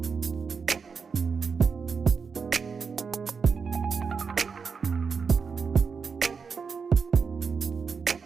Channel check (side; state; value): left; quieter; 5.5 dB